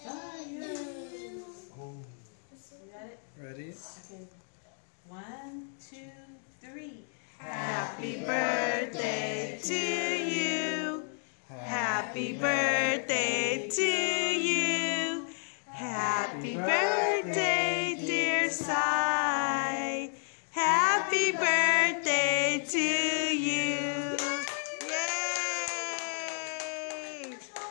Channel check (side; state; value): right; silent; 55 dB below the other